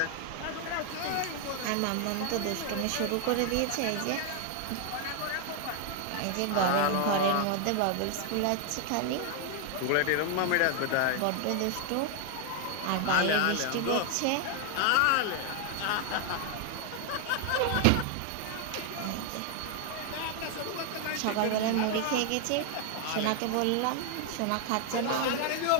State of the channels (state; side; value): different; both; correlation 0.00